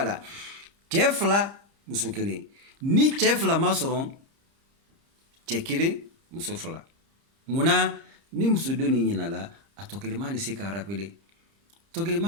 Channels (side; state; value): left; late; 30 ms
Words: la cɛ fila muso kelen ni cɛ fila ma sɔrɔ cɛ kelen muso fila munna ni muso dɔ ni ɲinala a tɔ kelen ma ni se ka rapele tɔ kelen